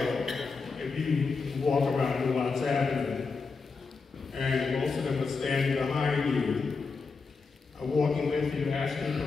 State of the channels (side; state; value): right; quieter; 4.6 dB